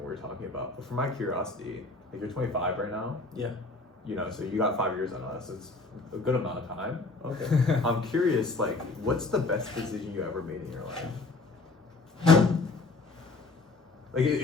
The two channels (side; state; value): right; quieter; 3.5 dB